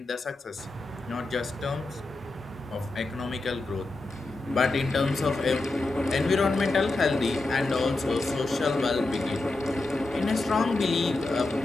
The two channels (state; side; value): quieter; right; 3.1 dB